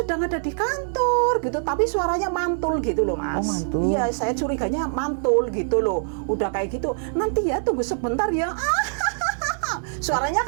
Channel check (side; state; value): left; silent; digital silence